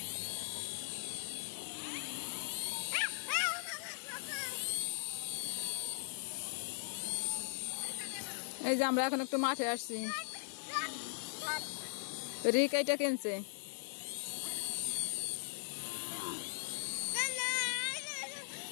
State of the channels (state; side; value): silent; right; digital silence